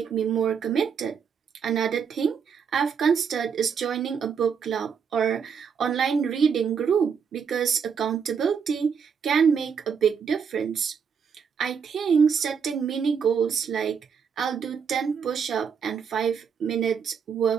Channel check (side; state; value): left; quieter; 6.7 dB